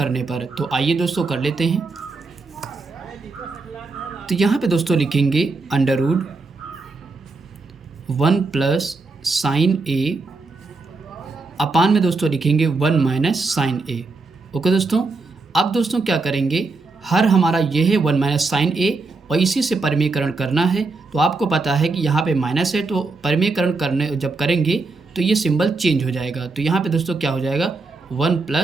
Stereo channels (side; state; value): left; quieter; 3.7 dB